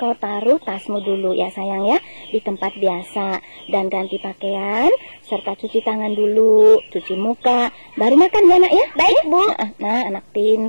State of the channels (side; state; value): both; inverted; correlation -1.00